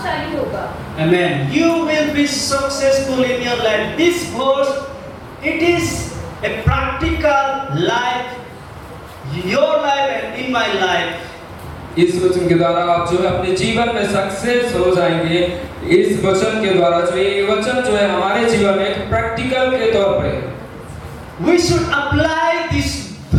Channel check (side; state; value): both; identical; correlation 1.00